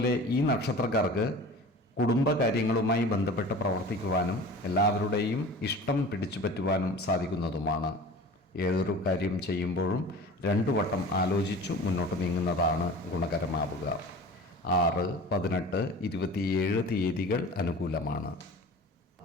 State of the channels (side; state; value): both; normal; correlation 0.39